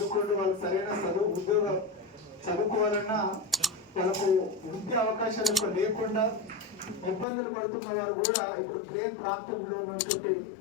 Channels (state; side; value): drops out; right; at 7.2 s